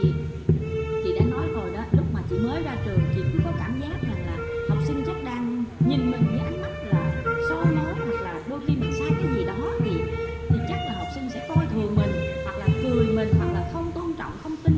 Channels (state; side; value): identical; both; correlation 1.00